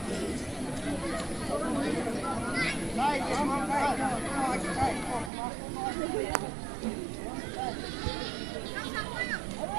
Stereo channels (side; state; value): left; drops out; at 5.3 s